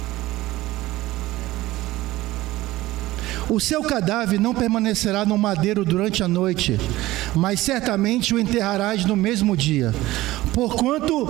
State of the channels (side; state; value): left; quieter; 17.3 dB